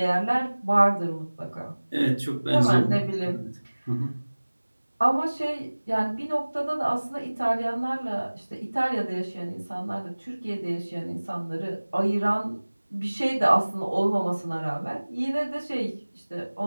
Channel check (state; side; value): inverted; both; correlation -1.00